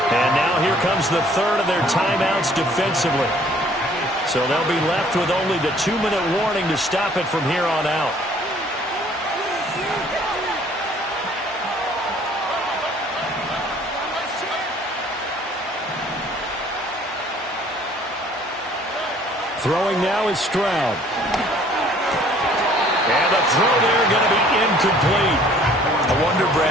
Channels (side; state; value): both; normal; correlation 0.57